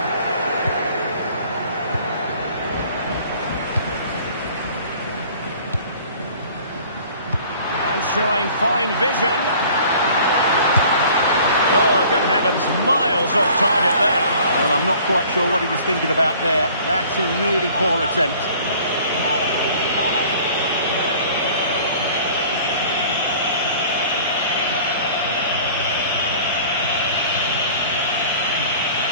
And showing fine vision. Oh, good heavens, miles off target there. Well, I'm not quite sure what he was thinking about there. That's a really poor attempt.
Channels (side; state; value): both; inverted; correlation -0.50